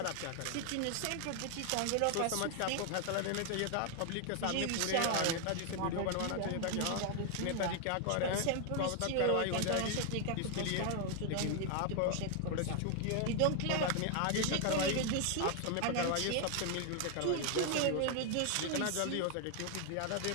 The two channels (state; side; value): different; both; correlation 0.00